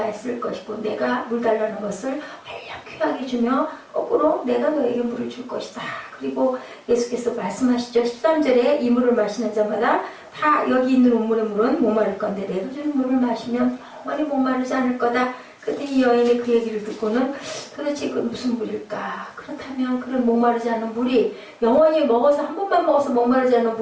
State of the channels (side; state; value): both; identical; correlation 1.00